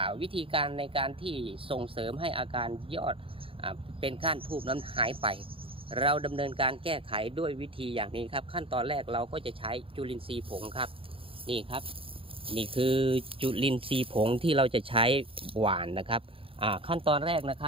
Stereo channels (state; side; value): late; left; 0.26 ms